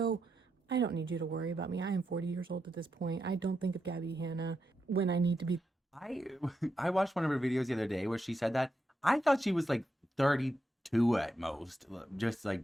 I don't need you to worry about me. I am 40 years old at this point. I don't think of Gabbie Hanna when I need to be. I watched one of her videos the other day where she said that. I thought she was like 32 2 at most, just like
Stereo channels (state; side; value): normal; both; correlation 0.84